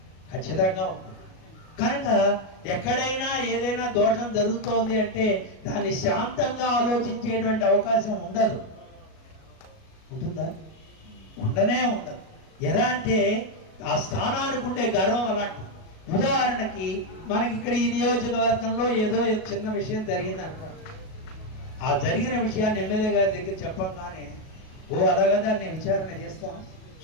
ఖచ్చితంగా ఉంటుంది. కనుక ఎక్కడైనా ఏదైనా దోషం జరుగుతోంది అంటే దాన్ని శాంతంగా ఆలోచించేటువంటి అవకాశం ఉండదు. ఉంటుందా? ఉండనే ఉండదు. ఎలా అంటే ఆ స్థానానికి ఉండే గర్వం అలాంటి. ఉదాహరణకి మనకి ఇక్కడ ఈ నియోజకవర్గంలో ఏదో చిన్న విషయం జరిగింది అనుకోండి. ఆ జరిగిన విషయాన్ని ఎమ్మెల్యే గారి దగ్గర చెప్పంగానే ఓ అలాగా దాన్ని విచారణ చేస్తాం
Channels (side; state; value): right; late; 37 ms